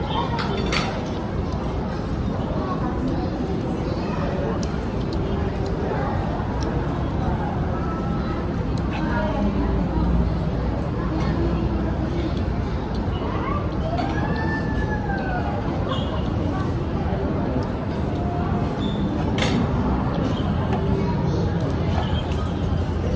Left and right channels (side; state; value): both; identical; correlation 1.00